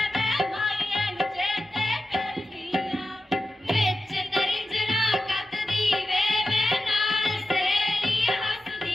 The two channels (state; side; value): normal; both; correlation 0.92